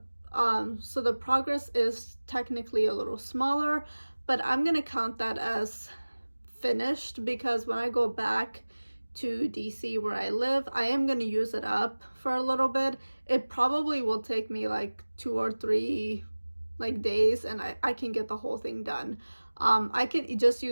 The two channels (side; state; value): both; inverted; correlation -1.00